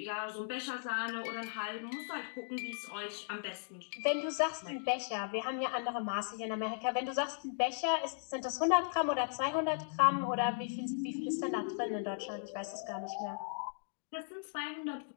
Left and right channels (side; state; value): right; silent; digital silence